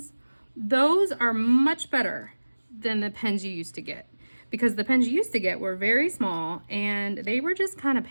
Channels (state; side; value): inverted; both; correlation -1.00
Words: those are much better than the pens you used to get, because the pens you used to get were very small and they were just kind of